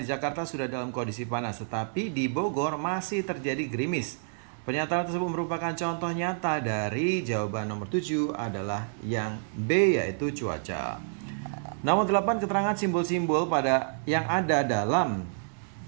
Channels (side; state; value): left; silent; 59 dB below the other